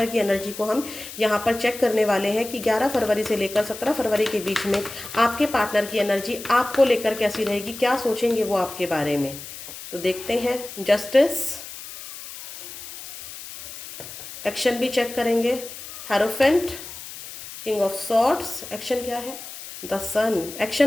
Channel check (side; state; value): left; noise; hiss, 12 dB below the sound